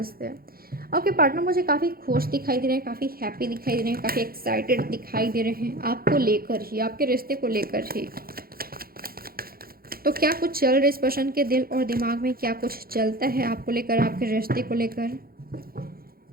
दें। आपके पार्टनर मुझे काफ़ी खुश दिखाई दे रहे हैं, काफ़ी हैप्पी दिखाई दे रहे हैं, काफ़ी एक्साइटेड दिखाई दे रहे हैं आपको लेकर ही, आपके रिश्ते को लेकर ही। तो क्या कुछ चल रहा है इस पर्सन के दिल और दिमाग में, क्या कुछ चलता है आपको लेकर, आपके रिश्ते को लेकर,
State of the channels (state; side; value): late; left; 0.43 ms